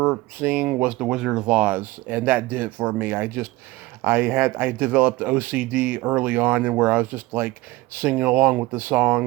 seeing was The Wizard of Oz, and that did it for me. I developed OCD early on, and where I was just like singing along with the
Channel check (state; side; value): quieter; left; 19.8 dB